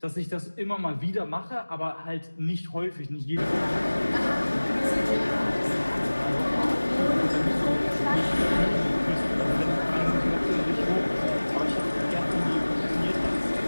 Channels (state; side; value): inverted; both; correlation -1.00